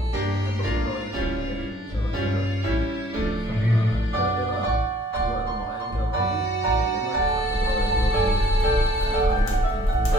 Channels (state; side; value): normal; both; correlation 0.58